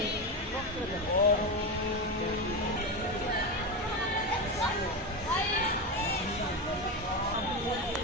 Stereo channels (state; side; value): normal; both; correlation 0.15